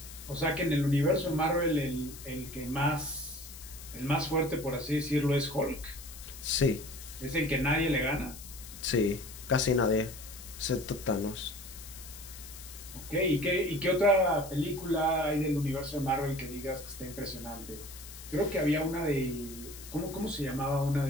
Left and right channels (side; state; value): left; noise; hiss, 15 dB below the sound